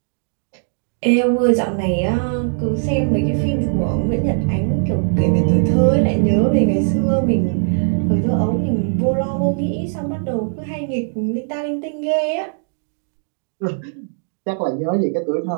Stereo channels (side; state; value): left; silent; digital silence